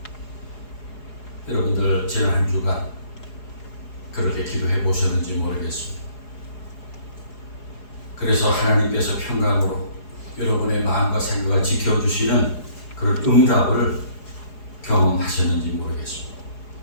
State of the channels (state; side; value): late; right; 4.8 ms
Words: 여러분들 지난 한 주간 그렇게 기도해 보셨는지 모르겠습니다. 그래서 하나님께서 평강으로 여러분의 마음과 생각을 지켜주시는 그런 응답을 경험하셨는지 모르겠습니다.